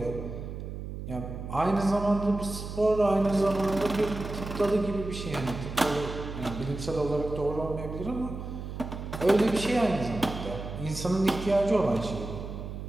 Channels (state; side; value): noise; right; hum, 8 dB below the sound